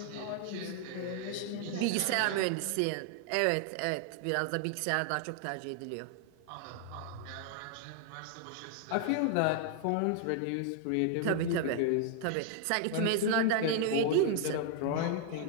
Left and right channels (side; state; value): both; different; correlation 0.00